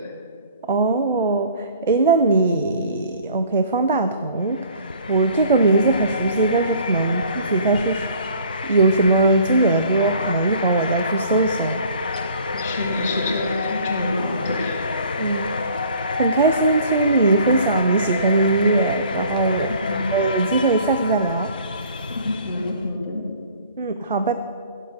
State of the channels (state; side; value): inverted; both; correlation -0.53